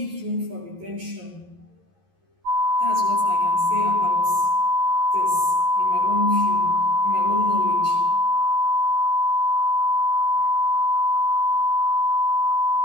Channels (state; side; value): late; left; 11 ms